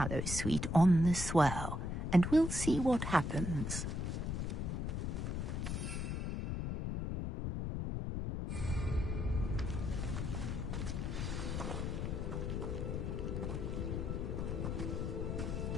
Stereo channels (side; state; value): left; noise; rumble, 2 dB below the sound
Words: sweet on the swell, and we'll see what happens.